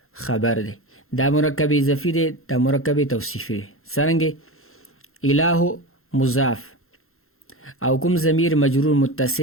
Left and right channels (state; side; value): late; right; 0.62 ms